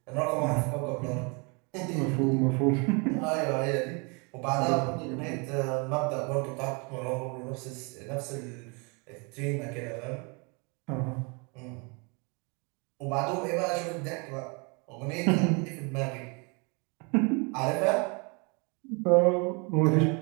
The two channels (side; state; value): left; quieter; 32.1 dB